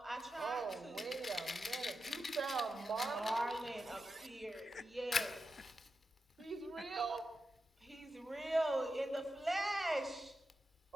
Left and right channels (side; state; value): both; normal; correlation 0.89